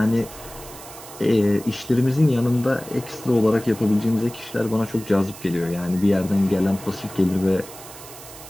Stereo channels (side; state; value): right; noise; hiss, 16 dB below the sound